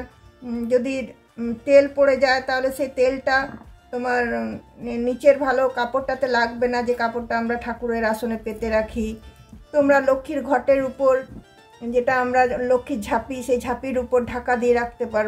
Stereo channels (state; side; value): identical; both; correlation 1.00